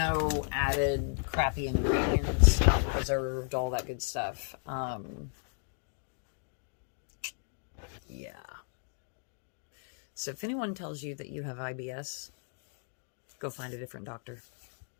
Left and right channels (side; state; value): right; silent; 55 dB below the other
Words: added crappy ingredients, not preserved, all that good stuff. Yeah. So if anyone tells you that you have IBS, go find a different doctor.